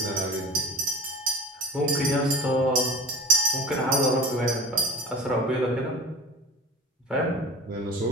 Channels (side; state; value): both; normal; correlation 0.38